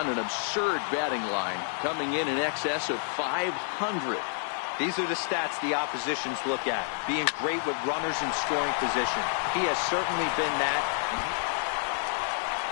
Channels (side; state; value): right; silent; 59 dB below the other